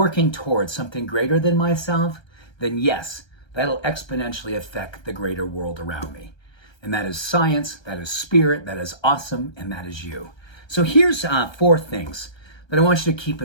towards something greater than myself, then yes, that'll exponentially affect the greater world around me. And that is science, that is spirit, that is awesome, and that is you. So here's 4 things that I want you to keep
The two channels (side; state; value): right; late; 1.3 ms